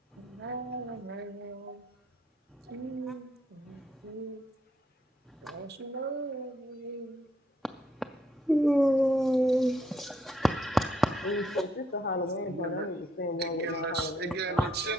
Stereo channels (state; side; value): normal; both; correlation 0.73